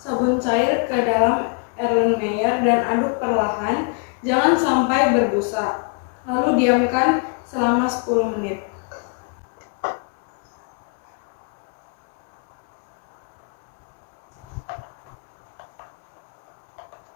cair ke dalam Erlenmeyer dan aduk perlahan, jangan sampai berbusa. Lalu diamkan selama 10 menit.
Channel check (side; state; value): right; quieter; 39.2 dB